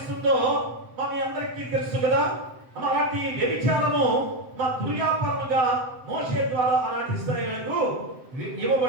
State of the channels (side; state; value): left; late; 7.8 ms